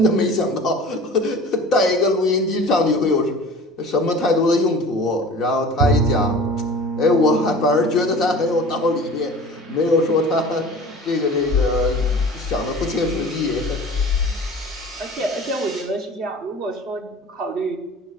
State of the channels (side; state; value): both; normal; correlation 0.41